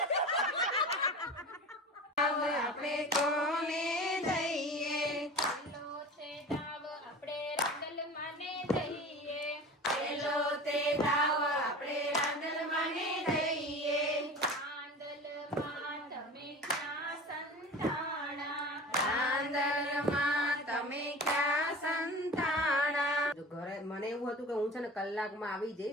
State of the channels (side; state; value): both; normal; correlation 0.36